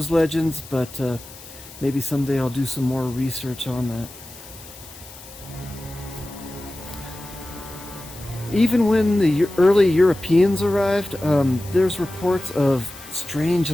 legends, but maybe someday I'll do some more research on that. Even when the early Europeans arrived, there's reports of strange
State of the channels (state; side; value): noise; left; hiss, 18 dB below the sound